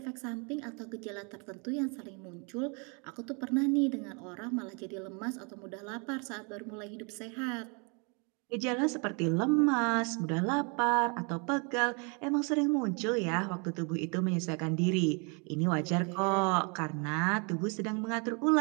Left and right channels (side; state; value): left; quieter; 34.6 dB